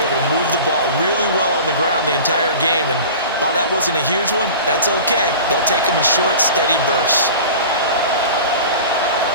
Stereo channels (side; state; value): both; inverted; correlation -0.37